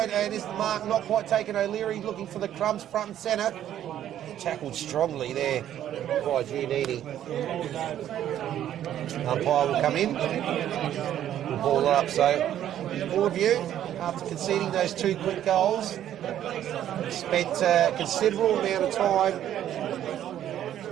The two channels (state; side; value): quieter; left; 11.2 dB